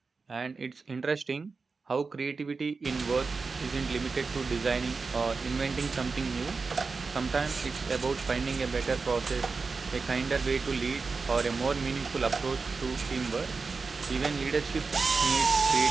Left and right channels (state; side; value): quieter; left; 4.5 dB